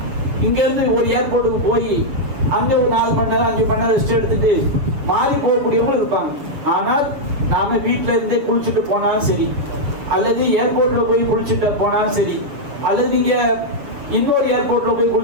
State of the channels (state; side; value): late; left; 7.1 ms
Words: இங்க இருந்து ஒரு ஏர்போர்ட்டுக்கு போய் அங்க ஒரு 4 மணி நேரம் 5 மணி நேரம் ரெஸ்ட் எடுத்துட்டு மாறி போகக்கூடியவங்களும் இருப்பாங்க. ஆனால் நாம வீட்டுல இருந்தே குளிச்சுட்டு போனாலும் சரி, அல்லது ஏர்போர்ட்ல போய் குளிச்சுட்டு போனாலும் சரி, அல்லது நீங்க இன்னொரு ஏர்போர்ட்ல போய்